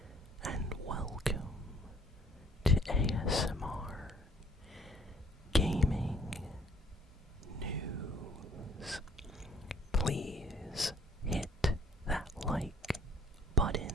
and welcome to ASMR Gaming News. Please hit that like button.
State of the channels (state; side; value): normal; both; correlation 0.59